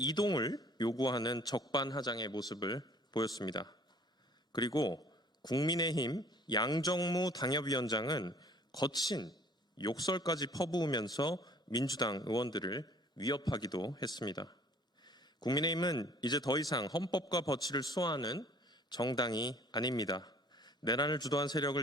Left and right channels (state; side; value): normal; both; correlation 0.54